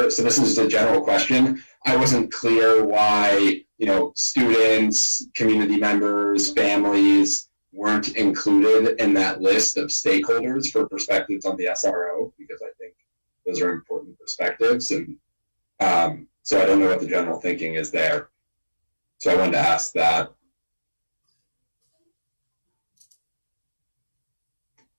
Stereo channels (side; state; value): both; inverted; correlation -1.00